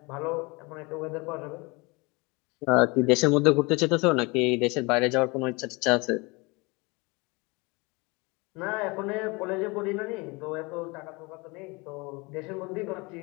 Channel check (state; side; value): quieter; right; 26.5 dB